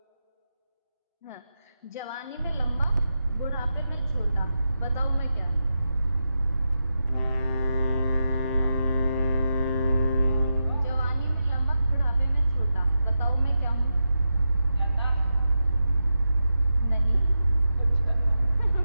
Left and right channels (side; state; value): both; inverted; correlation -0.89